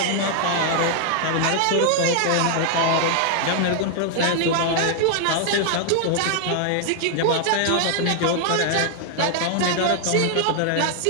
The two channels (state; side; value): different; both; correlation 0.00